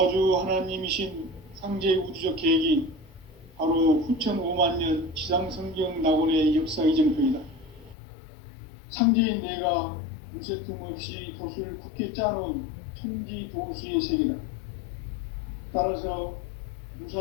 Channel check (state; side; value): drops out; right; at 8.0 s